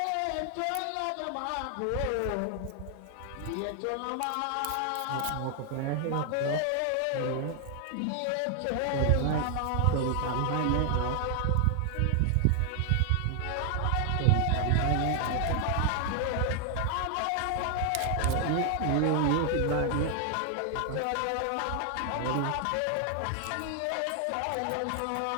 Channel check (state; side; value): different; both; correlation 0.00